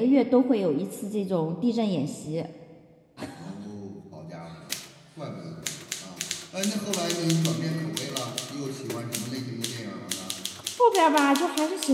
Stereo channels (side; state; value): both; identical; correlation 1.00